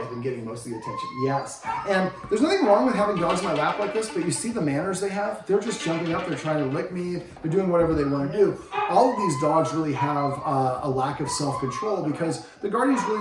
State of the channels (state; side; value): identical; both; correlation 1.00